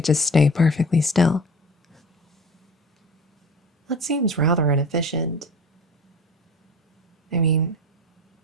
just stay perfectly still? That seems rather inefficient. I mean,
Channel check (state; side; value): normal; both; correlation 0.38